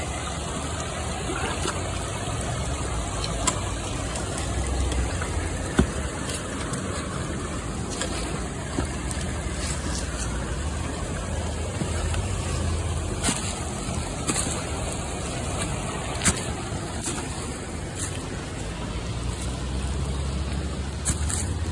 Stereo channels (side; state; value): both; identical; correlation 1.00